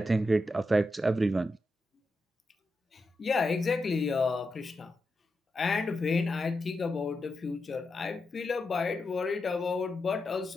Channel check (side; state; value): both; normal; correlation 0.88